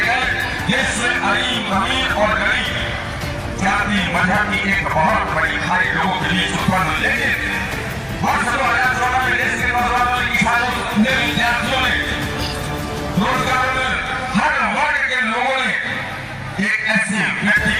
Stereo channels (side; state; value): both; identical; correlation 1.00